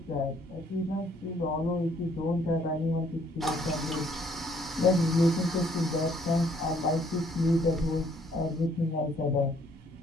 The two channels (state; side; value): normal; both; correlation 0.65